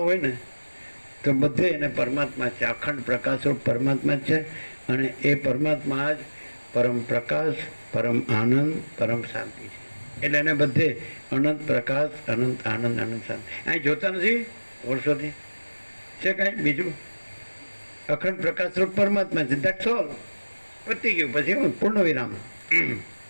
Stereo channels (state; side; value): inverted; both; correlation -1.00